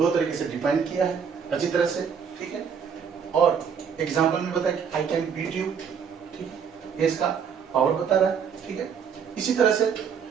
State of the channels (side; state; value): left; quieter; 6.9 dB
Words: तरीके से define किया है अच्छी तरह से, ठीक है। और एग्जांपल में बताया कि आई कैन बीट यू, ठीक है, ये इसका पावर बता रहा है, ठीक है। इसी तरह से